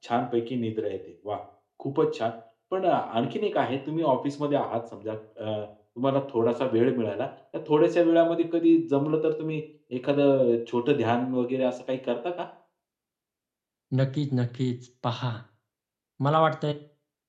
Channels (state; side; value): identical; both; correlation 1.00